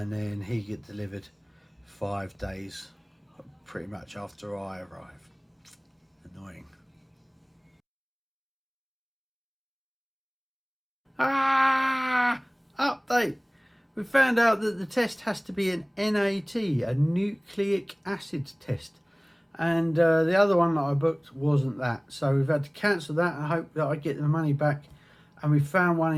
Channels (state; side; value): identical; both; correlation 1.00